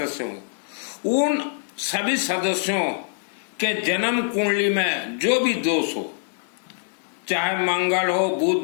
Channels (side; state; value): right; silent; 63 dB below the other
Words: हों, उन सभी सदस्यों के जन्म कुंडली में जो भी दोष हो, चाहे मंगल हो,